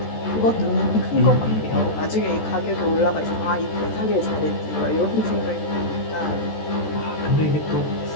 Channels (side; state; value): right; late; 14 ms